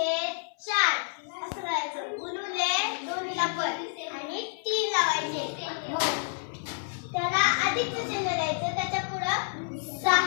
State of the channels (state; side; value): silent; right; 56 dB below the other